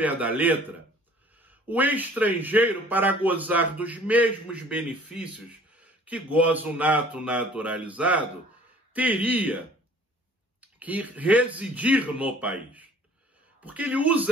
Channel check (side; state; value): both; normal; correlation 0.52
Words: da letra, o estrangeiro, para gozar dos mesmos benefícios que goza o nato naturalizado, teria que residir no país. Porque ele